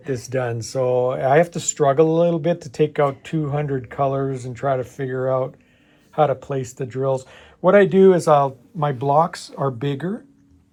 this done. So I have to struggle a little bit to take out 200 colors and try to figure out how to place the drills. What I do is my blocks are bigger.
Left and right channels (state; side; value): identical; both; correlation 1.00